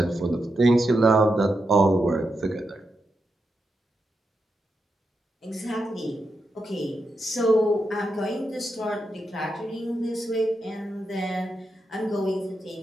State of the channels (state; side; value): normal; both; correlation 0.86